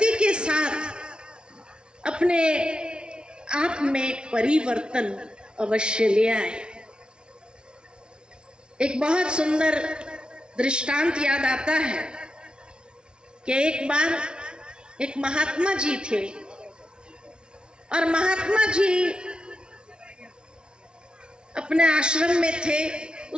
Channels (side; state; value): left; late; 0.055 ms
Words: के साथ अपने आप में परिवर्तन अवश्य ले आए। एक बहुत सुंदर दृष्टांत याद आता है कि एक बार एक महात्मा जी थे और महात्मा जी अपने आश्रम में थे।